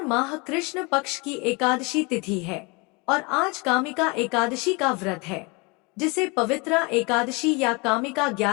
माह कृष्ण पक्ष की एकादशी तिथि है और आज कामिका एकादशी का व्रत है, जिसे पवित्रा एकादशी या कामिका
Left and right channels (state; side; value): quieter; right; 28.3 dB